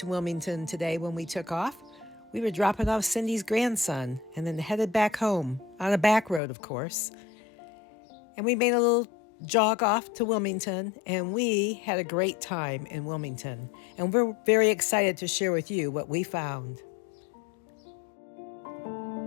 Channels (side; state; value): right; drops out; at 6.4 s